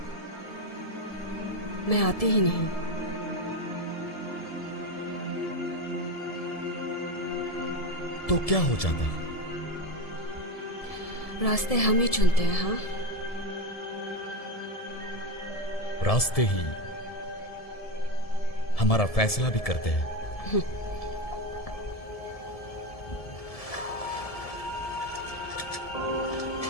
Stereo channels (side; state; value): right; late; 1.7 ms